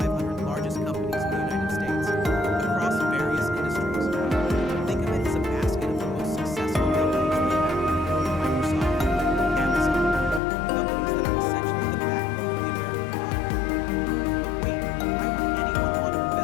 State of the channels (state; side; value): drops out; right; at 10.4 s